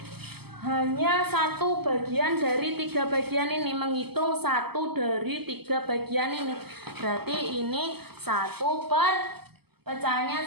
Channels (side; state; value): left; late; 0.96 ms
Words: hanya 1 bagian dari 3 bagian ini, menghitung 1 dari 3 bagian ini. Berarti ini 1 per